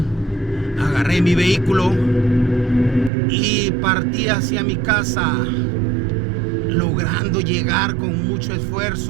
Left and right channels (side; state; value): left; drops out; at 3.1 s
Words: agarré mi vehículo y partí hacia mi casa, logrando llegar con mucho